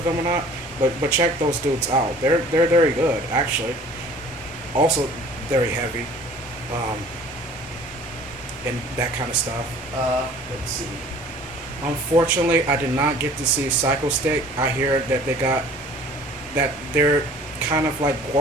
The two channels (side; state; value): both; normal; correlation 0.50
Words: them or not, but check those dudes out. They're very good actually. Also very heavy, um, and that kind of stuff. Let's see. Unfortunately, I did not get to see Psycho Stick. I hear that they're kind of like